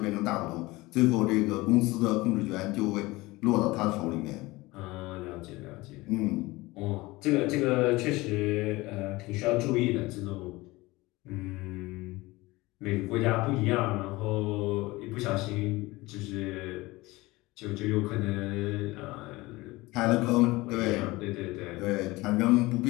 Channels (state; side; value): quieter; right; 21.0 dB